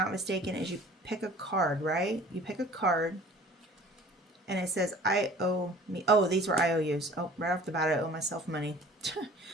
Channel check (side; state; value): both; normal; correlation 0.47